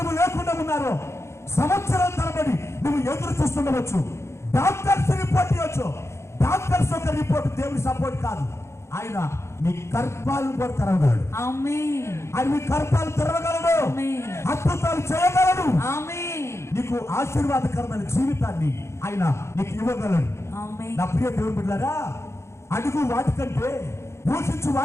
లేకుండా ఉన్నారో, సంవత్సరాల తరబడి నువ్వు ఎదురు చూస్తుండవచ్చు. డాక్టర్స్ రిపోర్ట్ ఇవ్వచ్చు. డాక్టర్స్ ఒక రిపోర్ట్ దేవుని సపోర్ట్ కాదు. ఆయన నీ గర్భాలను కూడా తెరవగలడు. ఆయన మీ గర్భాలు తెరవగలడు, అద్భుతాలు చేయగలడు. నీకు ఆశీర్వాదకరమైన జీవితాన్ని ఆయన నీకు ఇవ్వగలడు. నా ప్రియ దేవుని బిడ్డలారా, అడుగు వాటికంటే, యోచించు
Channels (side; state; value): right; late; 0.13 ms